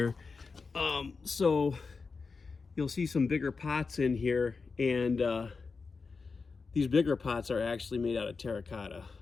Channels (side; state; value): right; quieter; 4.6 dB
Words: So you'll see some bigger pots in here, and these bigger pots are actually made out of terracotta.